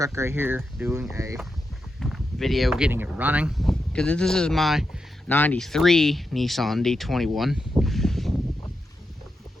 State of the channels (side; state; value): both; normal; correlation 0.87